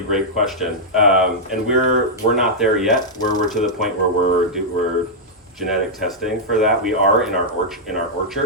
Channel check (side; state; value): both; normal; correlation -0.07